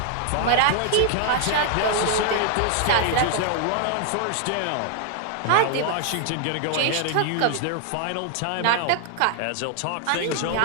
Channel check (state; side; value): different; both; correlation 0.00